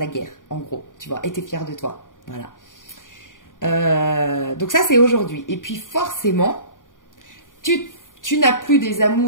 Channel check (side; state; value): right; late; 0.88 ms